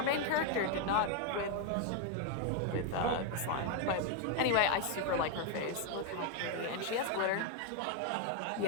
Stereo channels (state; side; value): different; both; correlation 0.01